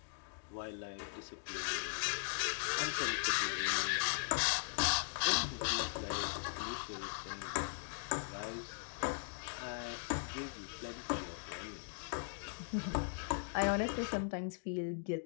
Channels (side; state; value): right; silent; digital silence